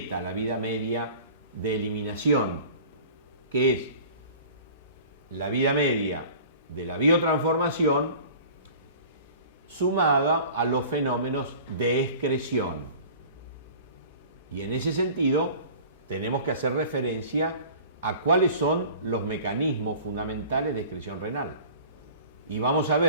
la vida media de eliminación, que es la vida media de la biotransformación sumada a los fenómenos de excreción. Y en ese sentido tenemos que hacer referencia a cuáles son los mecanismos fundamentales de excreción renal. Y vamos a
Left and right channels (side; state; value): both; inverted; correlation -0.43